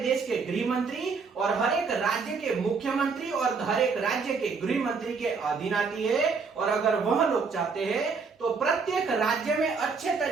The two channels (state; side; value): quieter; left; 5.0 dB